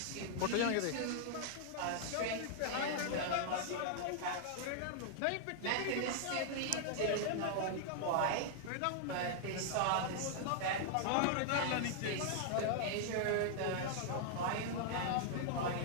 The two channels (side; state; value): both; different; correlation -0.01